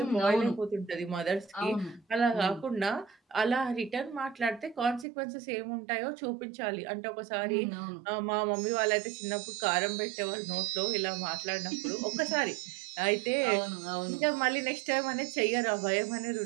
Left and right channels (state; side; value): drops out; left; at 5.1 s